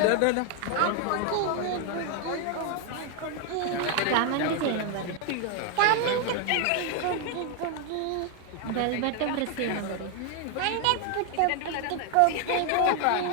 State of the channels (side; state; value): both; different; correlation 0.01